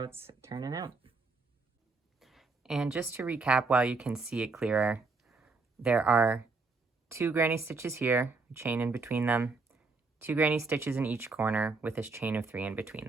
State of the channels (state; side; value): quieter; left; 4.0 dB